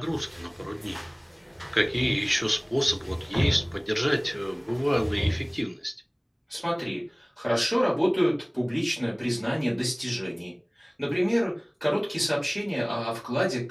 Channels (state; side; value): identical; both; correlation 1.00